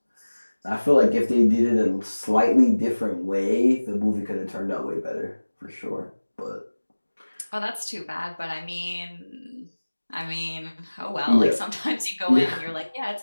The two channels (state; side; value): inverted; both; correlation -1.00